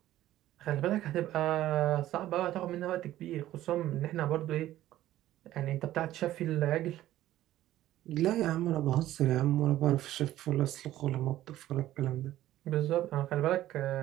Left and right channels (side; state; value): left; quieter; 14.1 dB